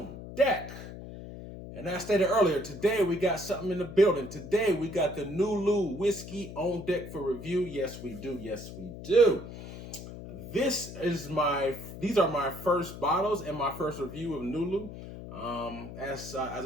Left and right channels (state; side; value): noise; left; hum, 12 dB below the sound